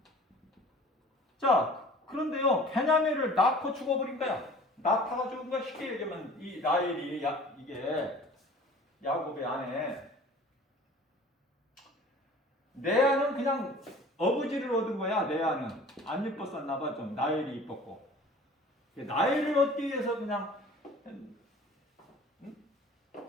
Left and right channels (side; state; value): both; normal; correlation 0.46